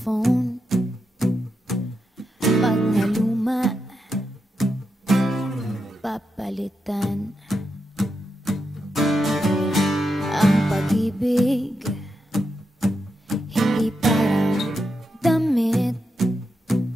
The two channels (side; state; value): both; normal; correlation 0.86